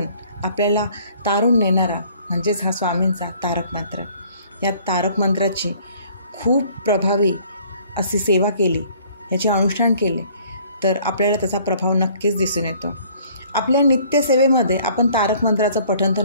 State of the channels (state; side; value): inverted; both; correlation -0.57